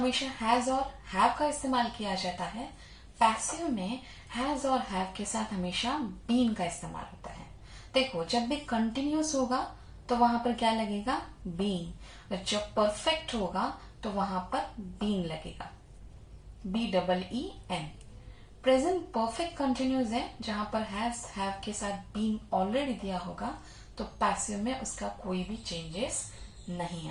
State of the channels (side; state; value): both; identical; correlation 1.00